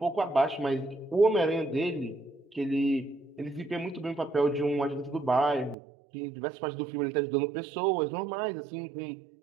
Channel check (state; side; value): drops out; left; at 5.8 s